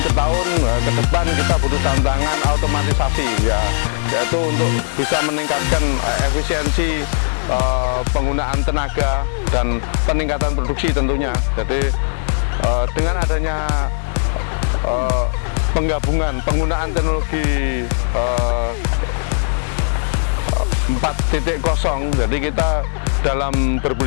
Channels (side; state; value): right; silent; digital silence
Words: ke tahun ke depan kita butuh tantangan otomatisasi, yaitu untuk bisa meningkatkan efisiensi penggunaan tenaga dan peningkatan produksi tentunya. Jadi dengan adanya penggunaan teknologi 4.0, jadi kita dalam